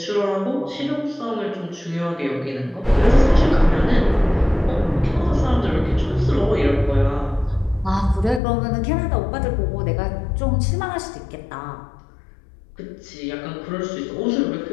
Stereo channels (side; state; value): right; drops out; at 8.4 s